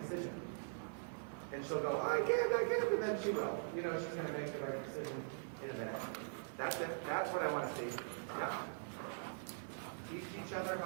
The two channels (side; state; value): left; silent; digital silence